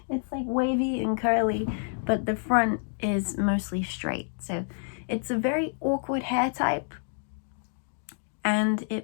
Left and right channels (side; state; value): right; silent; digital silence